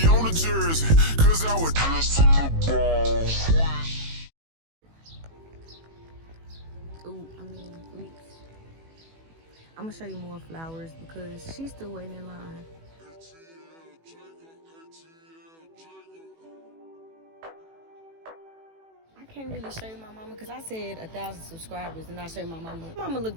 on the jersey, cause I was just in the ball. Oops. I'm gonna show you more flowers because she's still waiting in line. I can't really show you my mama because I said 1,000 subscribers and I show you my mama. Mama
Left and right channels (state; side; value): late; left; 18 ms